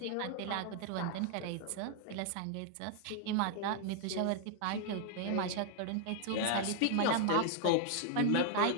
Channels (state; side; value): different; both; correlation 0.00